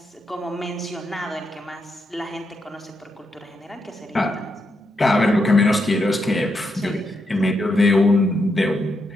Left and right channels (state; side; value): normal; both; correlation 0.82